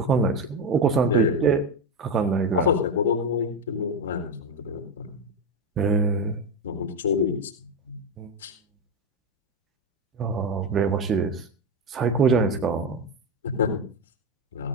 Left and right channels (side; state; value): both; normal; correlation 0.13